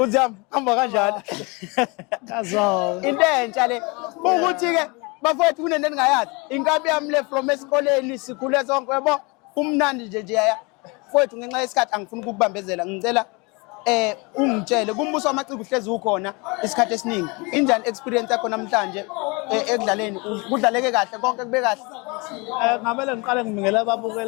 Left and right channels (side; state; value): right; quieter; 28.4 dB